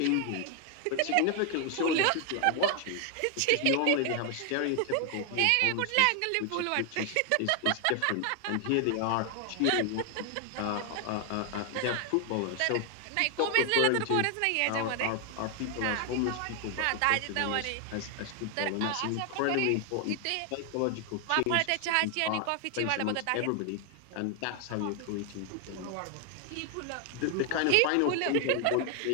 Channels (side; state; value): both; different; correlation 0.00